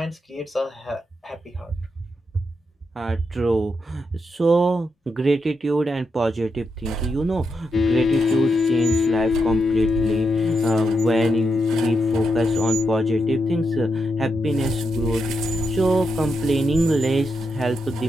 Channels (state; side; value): normal; both; correlation 0.84